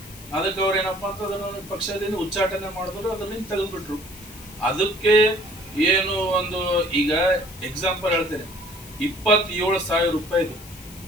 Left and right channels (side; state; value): left; noise; hiss, 18 dB below the sound